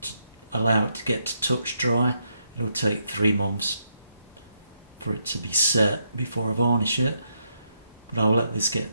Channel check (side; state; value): both; inverted; correlation -0.78